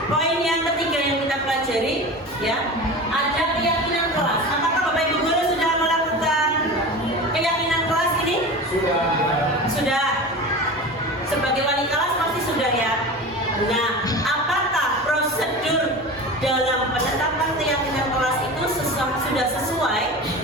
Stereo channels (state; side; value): normal; both; correlation 0.31